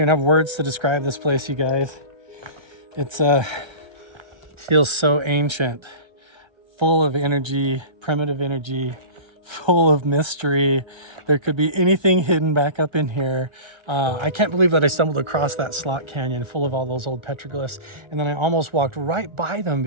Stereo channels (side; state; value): left; late; 1.3 ms